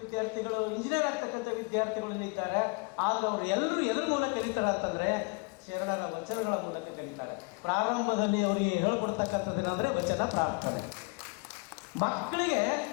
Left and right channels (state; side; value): quieter; right; 31.5 dB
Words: ವಿದ್ಯಾರ್ಥಿಗಳು, ಇಂಜಿನಿಯರ್ ಆಗ್ತಕ್ಕಂಥ ವಿದ್ಯಾರ್ಥಿಗಳು ಇದ್ದಾರೆ. ಆದ್ರೆ ಅವರು ಎಲ್ಲರೂ ಎದ್ರ ಮೂಲಕ ಕಲಿತಾರೆ ಅಂತಂದ್ರೆ ಶರಣರ ವಚನಗಳ ಮೂಲಕ ಕಲಿತಾರೆ. ಪ್ರಾರಂಭದಲ್ಲಿ ಅವರಿಗೆ ಹೇಳ್ಕೊಡ್ತಕ್ಕಂಥದ್ದೇನೆಂದ್ರೆ ವಚನ ಪ್ರಾರ್ಥನೆ. ಮಕ್ಕಳಿಗೆ